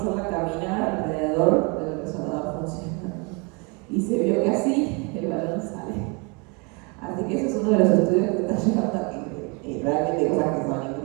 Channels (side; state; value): left; quieter; 31.2 dB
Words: caminar alrededor del resonador funcionando. Y se vio que así el balón sale. Así que ese es uno de los estudios que está llegando aquí. Realmente cosas que son